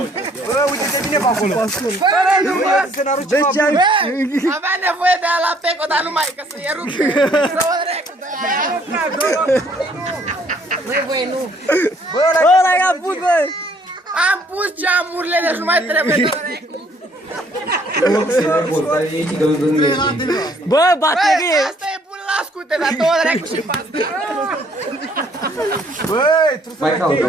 Bă, uite-te bine pe acolo! Fără număr! Să ne-aruci ceva bun! Avea nevoie de ala peco, dar nu mai, că să e rupt. Să o recu de aia. Băi, băi, nu. Bă, ăla i-a pus, bă! Am pus geamurile, deci nu mai trebuie de recu. Se report, dar e și că nu le Bă, Băi, baterie! asta e bun la scute, dar două recu și pasta. Băi, Mai caută,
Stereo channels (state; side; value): normal; both; correlation 0.63